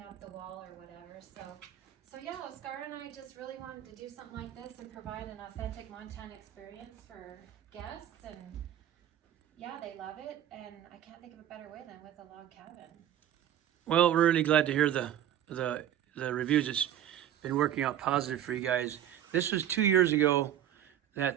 up the wall or whatever. So yeah, Oscar and I just really wanted to do something like this and provide an authentic Montana experience for guests, and yeah, they love it, and I can't think of a better way than with a log cabin. Well, we're really glad to hear the reviews. It's been working out positive for you guys. This was 2 years ago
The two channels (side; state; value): left; quieter; 11.0 dB